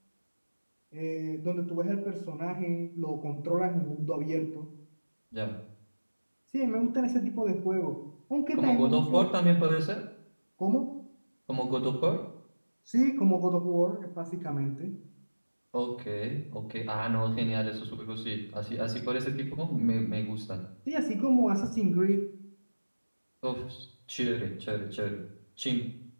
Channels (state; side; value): inverted; both; correlation -1.00